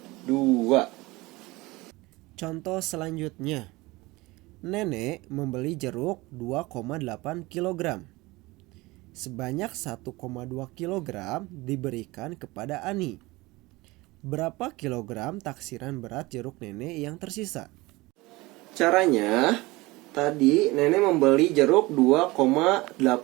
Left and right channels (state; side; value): quieter; left; 21.6 dB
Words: 2. Contoh selanjutnya. Nenek membeli jeruk 2,8 kg. Sebanyak 1,2 kg diberikan kepada Ani. Berapa kilogram taksiran berat jeruk nenek yang tersisa? Caranya, tadi nenek membeli jeruk 2,8